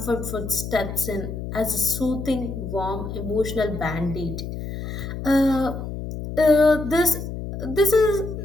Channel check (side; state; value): left; noise; hum, 7 dB below the sound